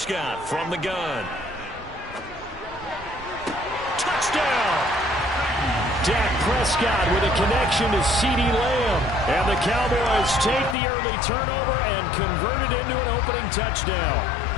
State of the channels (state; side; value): drops out; right; at 10.8 s